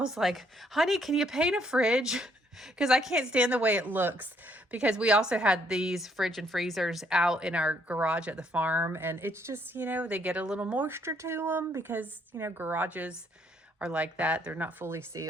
like, honey, can you paint a fridge? Because I can't stand the way it looks. Because we also had these fridge and freezers out in our garage at the farm, and it's just, they get a little moisture to them because, garages are like that. They're not fully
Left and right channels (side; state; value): both; normal; correlation 0.69